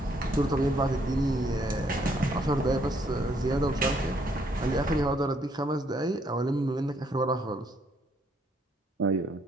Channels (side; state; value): both; normal; correlation 0.69